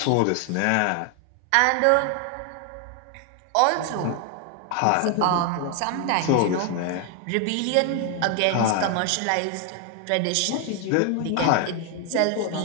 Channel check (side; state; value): both; different; correlation 0.01